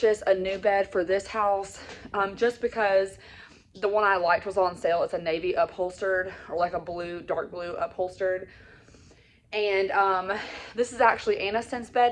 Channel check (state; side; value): identical; both; correlation 1.00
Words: a new bed for this house just because the one I liked was on sale. It's a navy upholstered, or like a blue, dark blue upholstered. And this is actually Aniston's